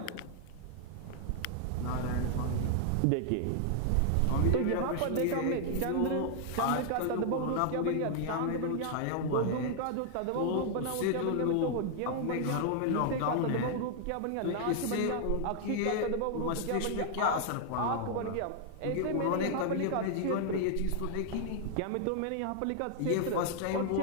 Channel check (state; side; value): different; both; correlation 0.00